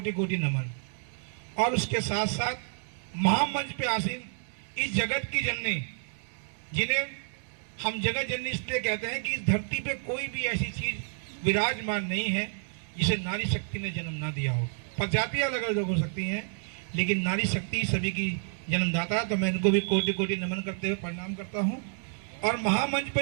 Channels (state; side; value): silent; left; 58 dB below the other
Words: कोटि नमन। और उसके साथ साथ महामंच पे आसीन इस जगत की जननी, जिन्हें हम जगत जननी इसलिए कहते हैं कि इस धरती पे कोई भी ऐसी चीज विराजमान नहीं है जिसे नारी शक्ति ने जन्म ना दिया हो। प्रजातियां अलग अलग हो सकती हैं, लेकिन नारी शक्ति सभी की जन्मदाता। तो मैं इनको भी कोटि कोटि नमन करते हुए प्रणाम करता हूँ। और महामंच